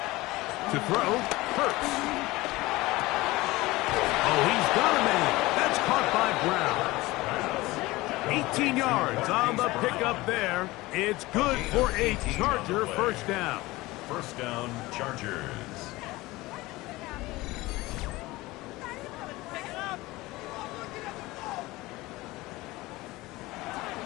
To throw, Hurts. Oh, he's got a man. That's caught by Brown. 18 yards on the pickup there. It's good for a Charger first down. First down, Chargers.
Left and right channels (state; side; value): quieter; right; 20.0 dB